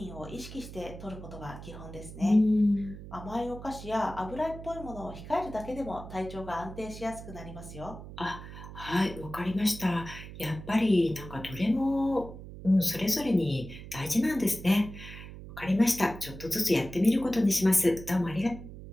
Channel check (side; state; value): right; noise; hum, 13 dB below the sound